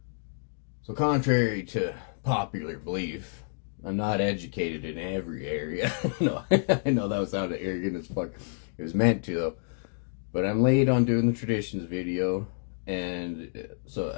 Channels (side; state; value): right; silent; digital silence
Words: So contrary to popular belief, I'm not educated in every area. No, I know that sounded arrogant as fuck. It was meant to though. But I'm late on doing the traditions video, and